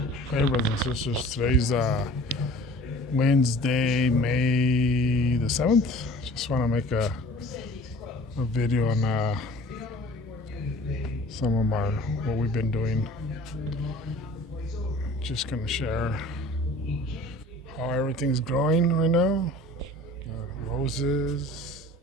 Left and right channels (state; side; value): normal; both; correlation 0.46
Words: brothers and sisters. Today's Wednesday, May the 7th. Just want to make a video on some of what we've been doing. Just going to share how everything's growing right now. Roses.